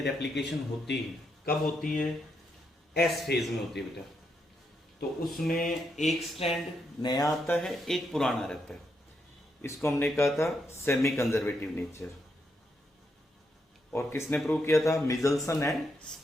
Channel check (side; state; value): both; normal; correlation 0.80